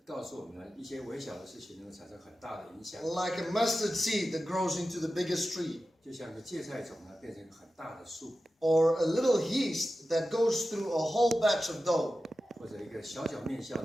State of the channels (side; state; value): both; normal; correlation 0.93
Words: 告诉我们呢，一些微小的事情能够产生很大的影响， Like a mustard seed that grows into the biggest tree, 就像个芥菜种呢，变成一个很大的树， or a little yeast that goes through a whole batch of dough, 或者一个小面酵